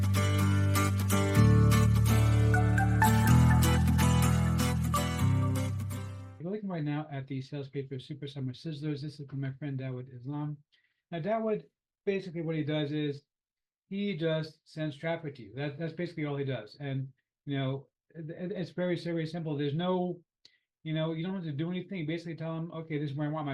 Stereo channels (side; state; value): both; identical; correlation 1.00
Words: You're looking right now at the sales page for Super Summer Sizzlers. This is from my friend Dawood Islam. Now, Dawood, basically what he does is he just sends traffic to you. That's basically all he does. And it's very simple. There's no, you don't have to do anything. Basically tell him, okay, this is where I want